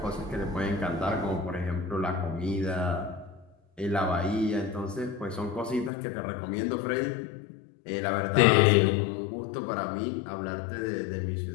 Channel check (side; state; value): right; drops out; at 5.9 s